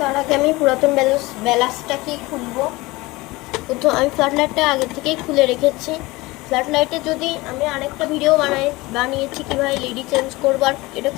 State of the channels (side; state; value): right; quieter; 21.4 dB